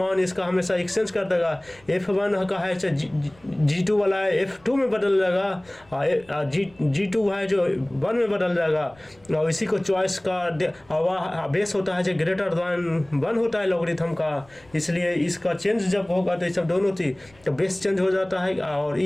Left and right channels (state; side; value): noise; left; rumble, 29 dB below the sound